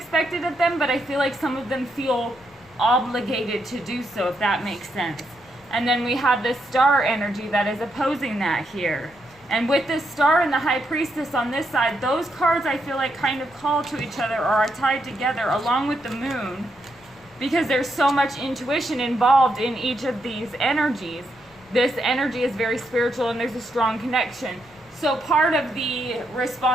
of them, but I feel like some of them feel obligated to do so, if that makes sense. And then we have this star energy that is opposing that here. And with this star and the High Priestess on this side, those cards I feel like kind of call to each other or are tied together along with the moon, because there's so much intuition involved in each of these energies. This energy is very spiritual and there's a strong connection. So part of the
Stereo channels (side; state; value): left; noise; rumble, 29 dB below the sound